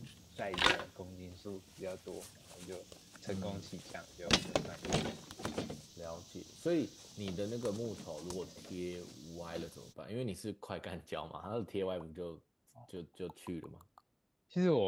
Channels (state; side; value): identical; both; correlation 1.00